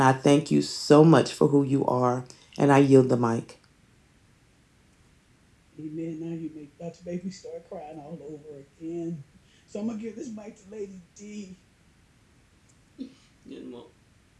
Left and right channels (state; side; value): identical; both; correlation 1.00